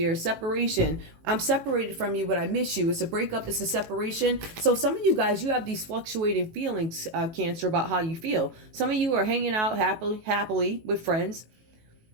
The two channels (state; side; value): late; left; 18 ms